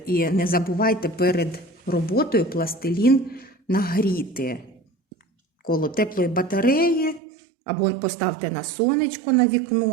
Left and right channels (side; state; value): left; drops out; at 7.2 s